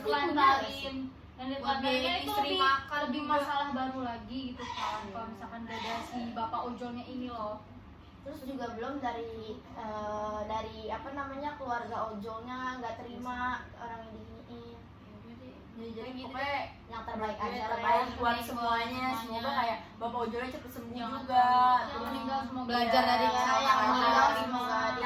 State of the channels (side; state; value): both; identical; correlation 1.00